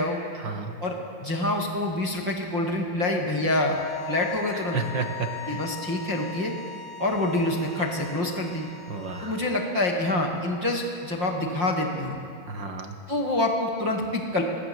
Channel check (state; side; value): late; left; 5.6 ms